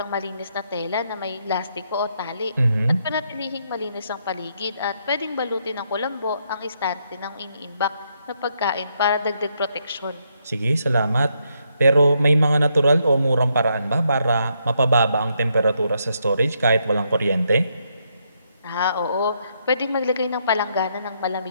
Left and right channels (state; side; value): inverted; both; correlation -0.77